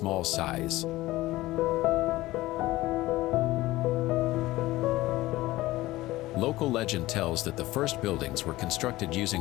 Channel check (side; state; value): right; quieter; 17.8 dB